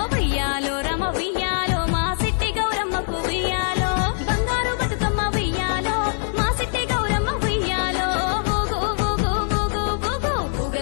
ఉయ్యాలో రమ ఉయ్యాలో మా సిట్టి గౌరమ్మకు ఉయ్యాలో బంగారు బతుకమ్మ ఉయ్యాలో మా సిట్టి గౌరమ్మ ఉయ్యాలో ఊగు ఊగు ఊగు ఊగు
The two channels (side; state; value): right; silent; 64 dB below the other